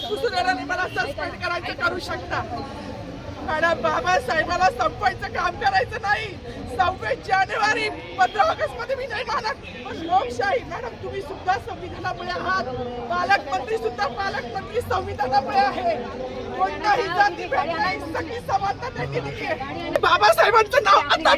पुसून येणार नाही. मला सस्पेंड करायचं करू शकता मॅडम, बाबासाहेबाला संपवायचं काम करायचं नाही. 26 जानेवारी 15 ऑगस्ट मध्ये मी नाही मानत, पण लोकशाही मॅडम तुम्ही सुद्धा संविधानामुळे आहात, पालकमंत्री सुद्धा पालकमंत्री संविधानामुळे आहे. कोणताही जाती भेद नाही, सगळी समानता त्यांनी दिली आहे. बाबासाहेबांचं नाव आता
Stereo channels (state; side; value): identical; both; correlation 1.00